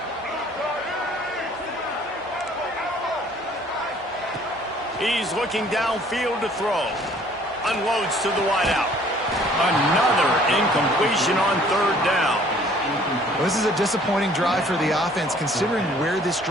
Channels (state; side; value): normal; both; correlation 0.56